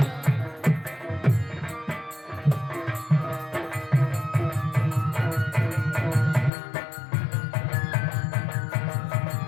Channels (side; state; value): right; drops out; at 6.5 s